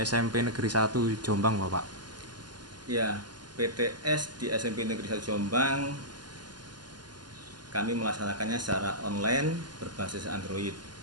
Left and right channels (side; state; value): left; late; 0.70 ms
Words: Negeri 1 Jombang, Bapak? Ya, PTS di SMP Negeri 1 Jombang kami melaksanakannya secara online berbasis Android.